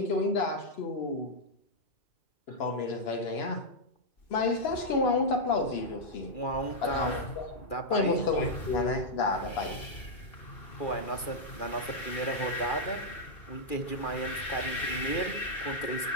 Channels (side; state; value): right; late; 2.4 ms